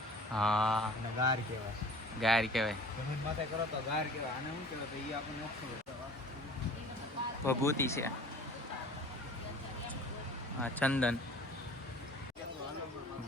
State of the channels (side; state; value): both; normal; correlation 0.45